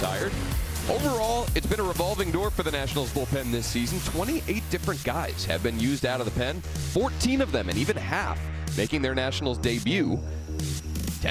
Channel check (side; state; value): both; identical; correlation 1.00